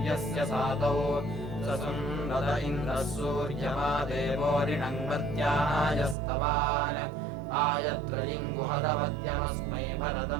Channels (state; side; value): drops out; left; at 6.2 s